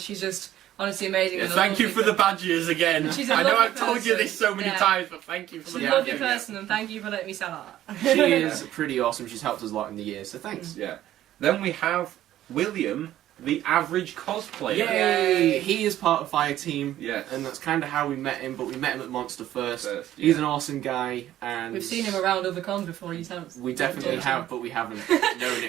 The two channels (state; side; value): quieter; left; 12.9 dB